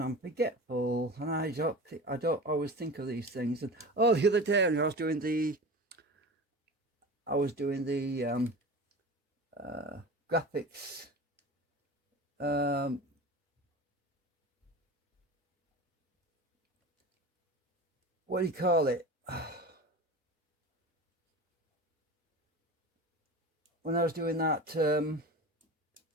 I'm forgetful, and I don't always think of these things. And oh, the other day I was doing the graphics. What do you call it? When I was doing that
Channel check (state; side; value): normal; both; correlation 0.32